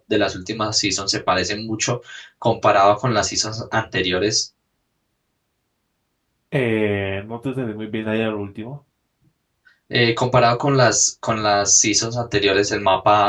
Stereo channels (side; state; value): both; identical; correlation 1.00